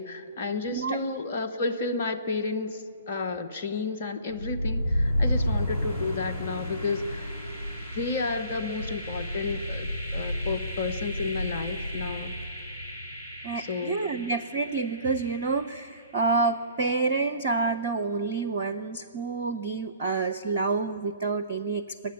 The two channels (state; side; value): inverted; both; correlation -0.51